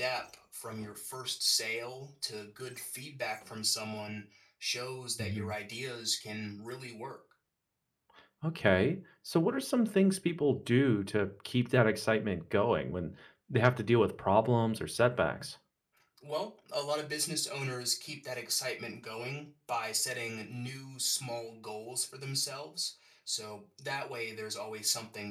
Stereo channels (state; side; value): identical; both; correlation 1.00